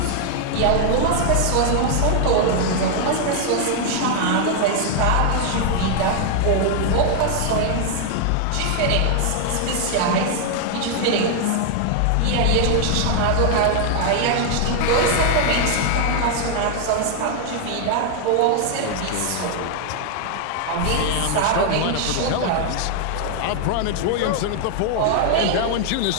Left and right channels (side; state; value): both; different; correlation 0.00